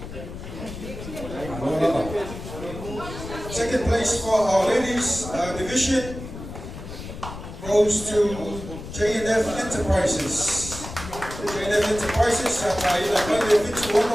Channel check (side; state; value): left; noise; rumble, 11 dB below the sound